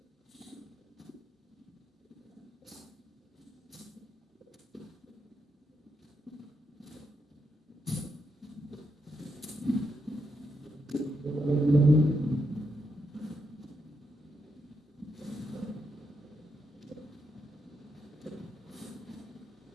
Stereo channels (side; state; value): both; normal; correlation 0.82